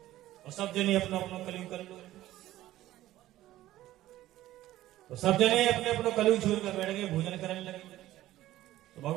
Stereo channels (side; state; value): left; quieter; 15.0 dB